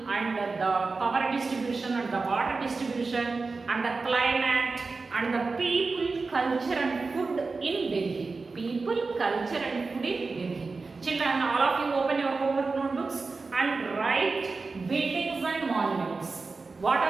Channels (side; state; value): left; quieter; 4.0 dB